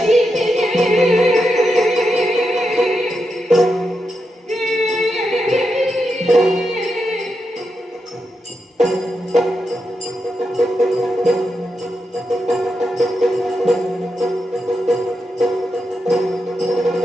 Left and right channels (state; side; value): normal; both; correlation 0.86